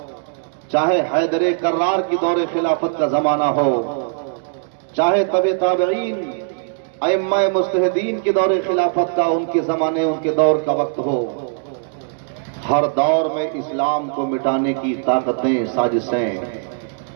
چاہے حیدر کرار کی دور خلافت کا زمانہ ہو، چاہے تبع تابعین ائمہ مجتہدین کے دور خلافت کا، ان کے زمانے ان کے دور کا وقت ہو، ہر دور میں اسلام کو مٹانے کی طاقتیں سازشیں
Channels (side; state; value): left; silent; digital silence